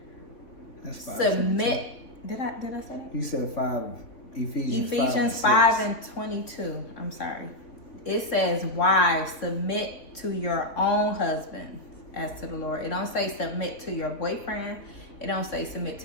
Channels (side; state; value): right; late; 3.5 ms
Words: That's 5. Submit. Did I say that? You said 5. Ephesians 5 and 22. I'm sorry. It says, wives, submit to your own husband as to the Lord. It don't say submit to your boyfriend. It don't say submit